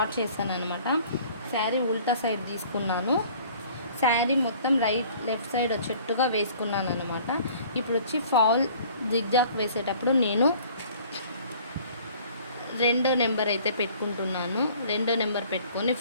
చేశాను అనమాట. శారీ ఉల్టా సైడ్ తీసుకున్నాను. శారీ మొత్తం లెఫ్ట్ సైడ్ వచ్చేట్టుగా వేసుకున్నాను అనమాట. ఇప్పుడు వచ్చి ఫాల్ జిగ్జాగ్ వేసేటప్పుడు నేను 2వ నెంబర్ అయితే పెట్టుకుంటున్నాను. 2వ నెంబర్ పెట్టుకొని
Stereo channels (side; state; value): both; inverted; correlation -0.52